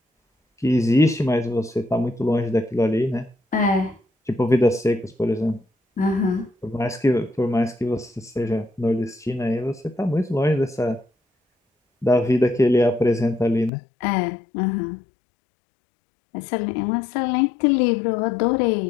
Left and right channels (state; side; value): drops out; right; at 13.7 s